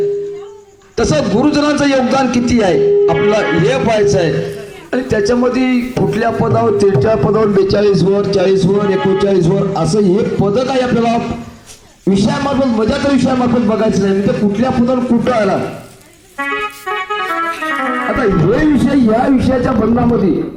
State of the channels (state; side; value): identical; both; correlation 1.00